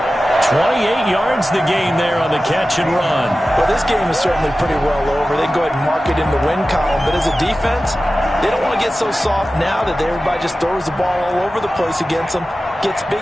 28 yards the gain there on the catch and run. Well, this game is certainly pretty well over. They can go ahead and mark it in the win column. But as a defense, they don't want to get so soft now that everybody just throws the ball all over the place against them, gets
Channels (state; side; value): normal; both; correlation 0.95